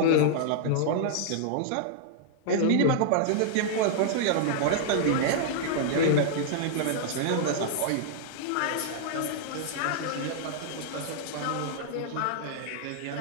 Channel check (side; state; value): both; different; correlation -0.02